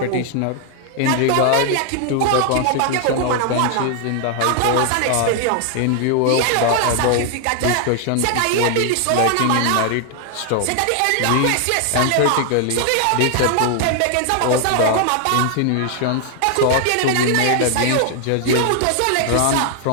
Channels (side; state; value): both; different; correlation 0.00